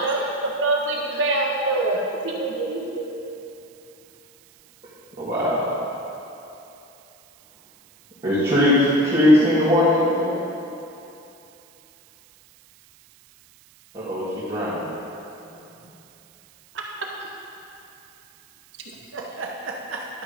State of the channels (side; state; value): right; noise; hiss, 28 dB below the sound